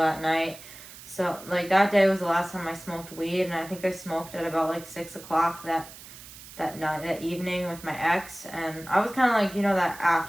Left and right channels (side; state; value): right; noise; hiss, 17 dB below the sound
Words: night. So, like, that day was the last time I smoked weed, and I think I smoked at about, like, 6 o'clock that night, that evening with my ex, and I was kind of like, you know, that